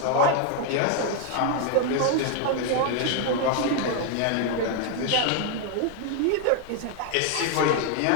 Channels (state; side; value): different; both; correlation 0.01